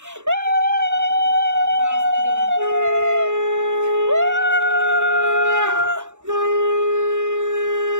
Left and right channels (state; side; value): late; left; 0.84 ms